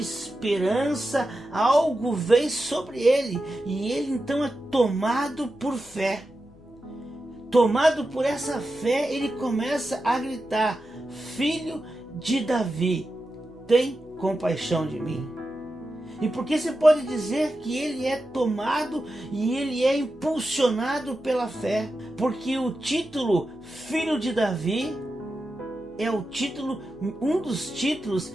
algo vem sobre ele, e ele então é tomado por fé. Tomado por essa fé, ele começa a gritar: Filho de Davi, tem compaixão de mim. E por que você pode dizer que ele é tomado e ele é impulsionado pela fé? Porque o título Filho de Davi é o título, um dos títulos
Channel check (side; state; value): both; normal; correlation 0.91